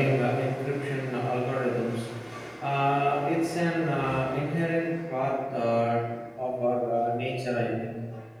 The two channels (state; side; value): identical; both; correlation 1.00